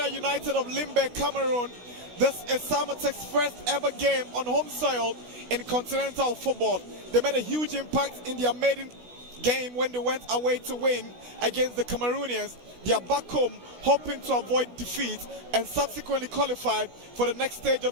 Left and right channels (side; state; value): left; late; 16 ms